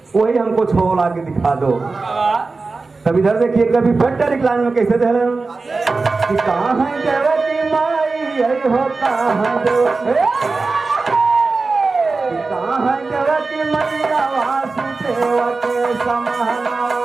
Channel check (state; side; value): quieter; left; 3.9 dB